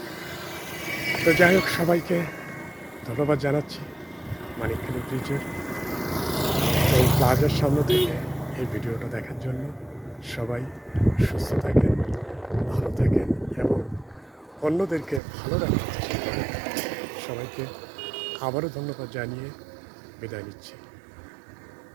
তো যাই হোক, সবাইকে ধন্যবাদ জানাচ্ছি মানিকখালী ব্রিজের এই প্লাজার সামনে থেকে এই ভিডিওটা দেখার জন্য। সবাই সুস্থ থাকেন, ভালো থাকেন এবং অন্যদেরকে ভালো রাখার চেষ্টা করেন। সবাইকে আবারও ধন্যবাদ জানিয়ে বিদায় নিচ্ছি।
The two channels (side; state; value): left; drops out; at 15.2 s